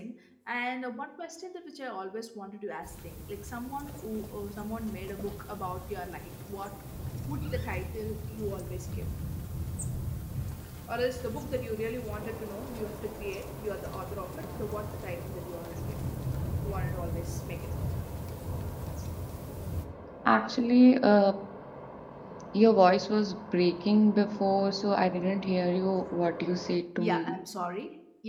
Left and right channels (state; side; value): identical; both; correlation 1.00